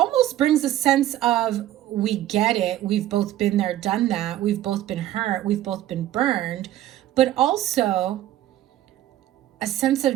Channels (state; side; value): quieter; left; 13.4 dB